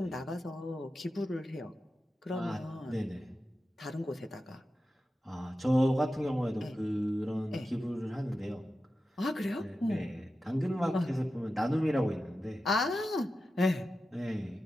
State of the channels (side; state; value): both; normal; correlation 0.92